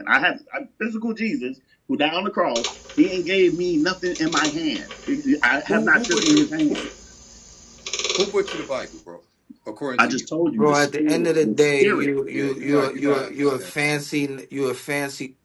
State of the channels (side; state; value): both; identical; correlation 1.00